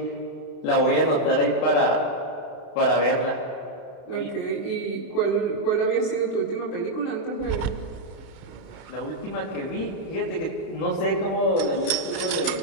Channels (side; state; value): right; late; 31 ms